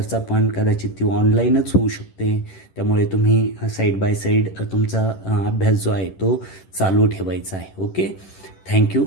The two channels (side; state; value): right; late; 10 ms